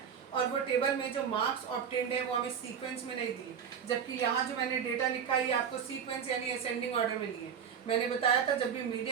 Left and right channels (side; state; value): left; quieter; 7.6 dB